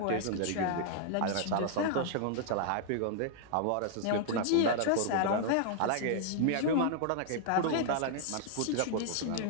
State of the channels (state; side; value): different; both; correlation -0.01